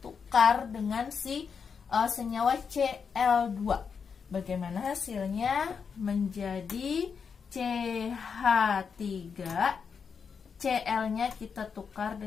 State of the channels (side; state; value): right; quieter; 6.1 dB